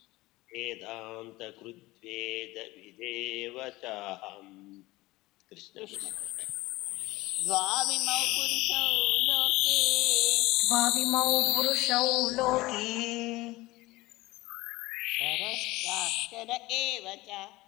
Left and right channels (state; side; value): quieter; right; 19.8 dB